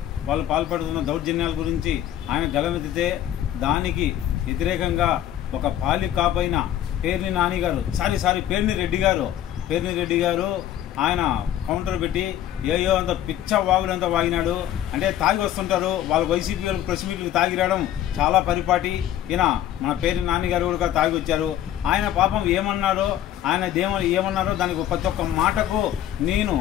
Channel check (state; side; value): quieter; right; 11.8 dB